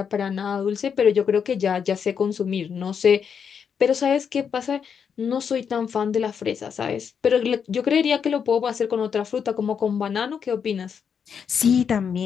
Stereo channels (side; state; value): right; quieter; 7.0 dB